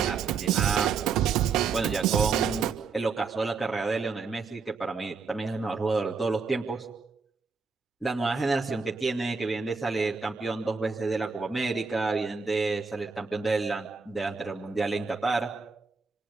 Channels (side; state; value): left; quieter; 4.9 dB